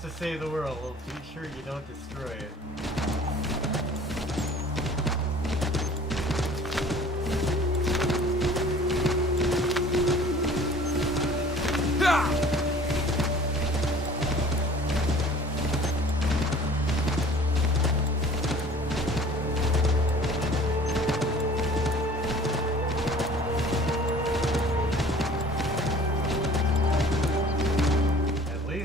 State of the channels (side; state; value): both; normal; correlation 0.48